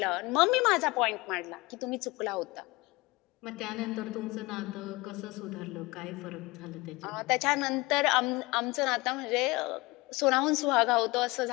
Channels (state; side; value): quieter; right; 22.8 dB